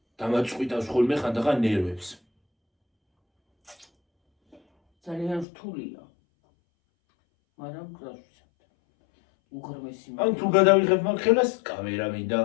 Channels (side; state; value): right; drops out; at 5.5 s